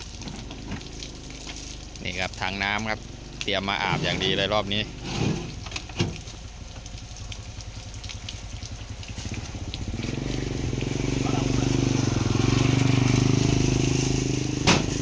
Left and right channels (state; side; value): identical; both; correlation 1.00